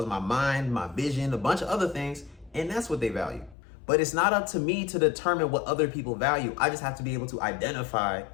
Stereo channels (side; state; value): right; drops out; at 3.6 s